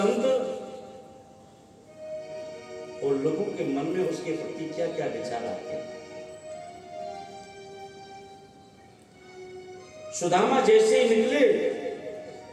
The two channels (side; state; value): both; identical; correlation 1.00